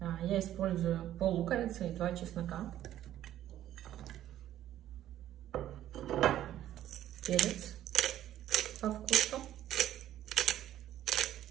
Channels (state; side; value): quieter; left; 12.4 dB